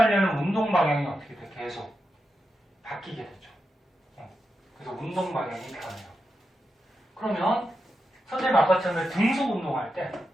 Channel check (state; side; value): normal; both; correlation 0.88